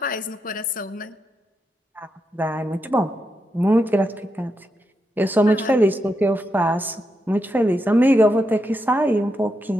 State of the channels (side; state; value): both; normal; correlation 0.84